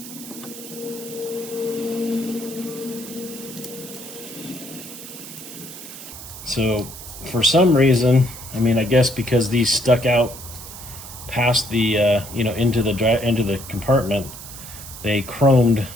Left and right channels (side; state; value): right; noise; hiss, 13 dB below the sound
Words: So for some reason, I mean, I guess because these stuck out past the into the compartment, they chromed